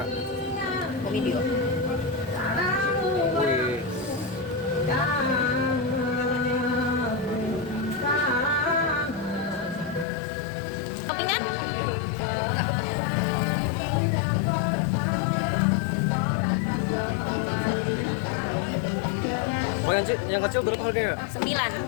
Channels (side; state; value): right; drops out; at 10.1 s